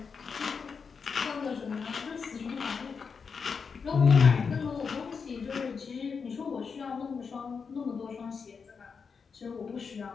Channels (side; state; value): right; quieter; 5.6 dB